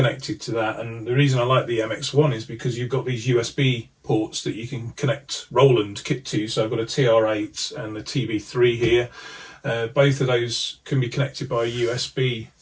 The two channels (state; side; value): identical; both; correlation 1.00